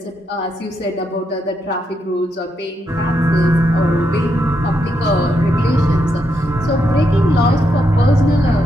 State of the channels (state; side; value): normal; both; correlation 0.81